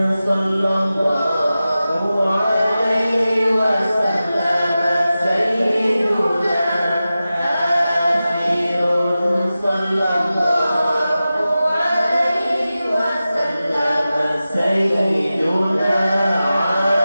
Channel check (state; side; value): inverted; both; correlation -0.94